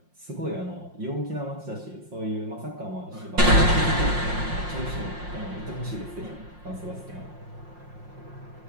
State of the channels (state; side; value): late; left; 5.6 ms